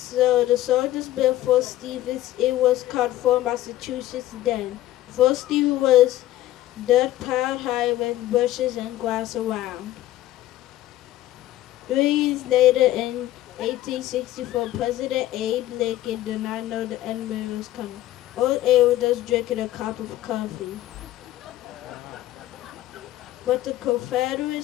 the soldiers built Fort Stevens. It was called Fort Massachusetts then. Fort Stevens was dirt piled high with bushes and grass around. 3 years later, in 1864, President Abe Lincoln did not know the enemy was coming. Old Abe was just drinking a cup of coffee. But the Confederate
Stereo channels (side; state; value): right; quieter; 14.6 dB